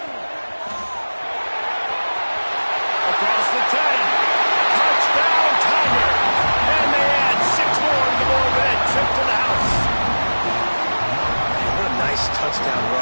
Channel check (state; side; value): inverted; both; correlation -1.00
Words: Across the 10. Touchdown, Tiger. And they add 6 more to the board with that trip to the house. Man, what a nice touchdown